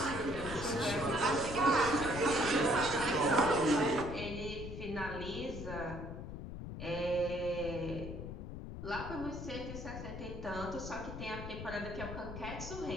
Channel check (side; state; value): left; noise; rumble, 8 dB below the sound